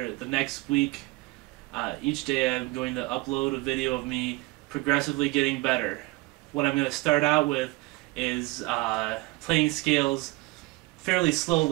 the next week, each day I'm going to upload a video of me progressively getting better. What I'm going to start out with is playing scales fairly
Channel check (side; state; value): left; quieter; 22.5 dB